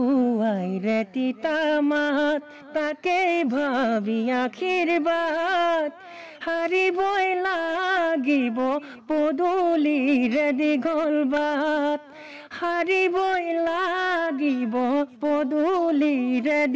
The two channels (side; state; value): both; identical; correlation 1.00